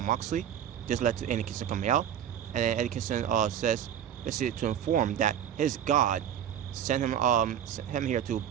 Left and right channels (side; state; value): left; quieter; 9.7 dB